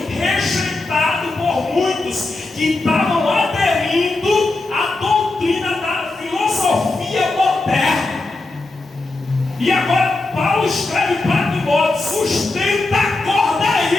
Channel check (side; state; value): right; quieter; 3.1 dB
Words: rejeitado por muitos que estavam aderindo à doutrina da filosofia moderna. E agora Paulo escreve para Timóteo: sustenta a corda